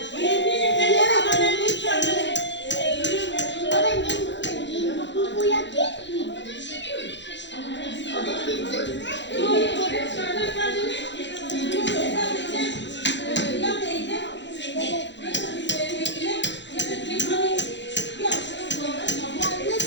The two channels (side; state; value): right; late; 0.52 ms